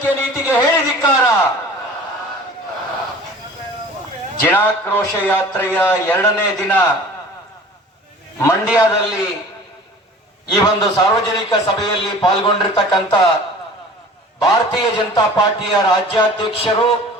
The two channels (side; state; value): both; normal; correlation 0.44